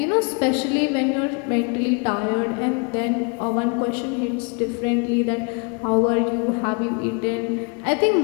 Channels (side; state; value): right; quieter; 35.3 dB